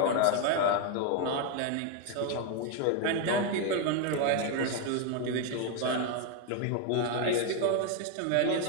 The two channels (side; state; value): both; different; correlation 0.01